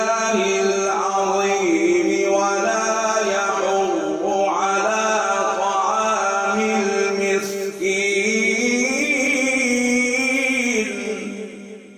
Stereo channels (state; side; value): identical; both; correlation 1.00